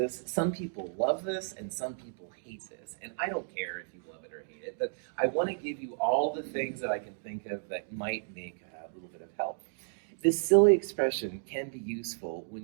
Some people love this and some people hate this, and I don't care if you love it or hate it, but I want to give you all the things that I can think of that might make a little bit of help. This silly expression can be useful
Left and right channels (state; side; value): silent; left; digital silence